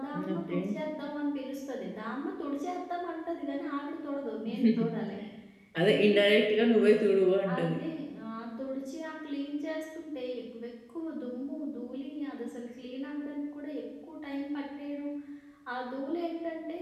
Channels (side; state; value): both; identical; correlation 1.00